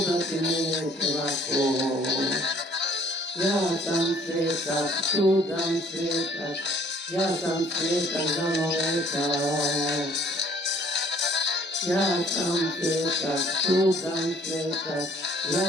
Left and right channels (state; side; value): normal; both; correlation 0.57